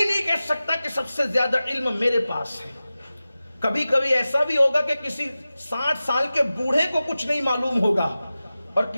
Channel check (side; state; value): both; inverted; correlation -0.95